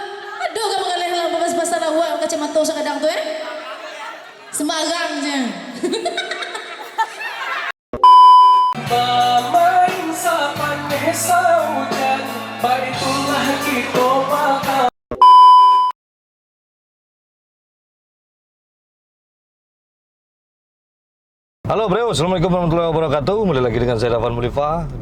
Aduh kamu kalian lah babas pasalah wa kacamata sa kadang tu Sembarangnya. Bermain sa paneh sa hujan, baitulah kita makan. Halo bro, assalamualaikum warahmatullahi wabarakatuh. Kembali lagi dengan saya Dafan Mulifa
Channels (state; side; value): identical; both; correlation 1.00